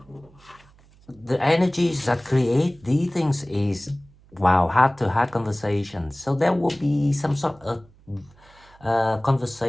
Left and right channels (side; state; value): right; noise; hum, 28 dB below the sound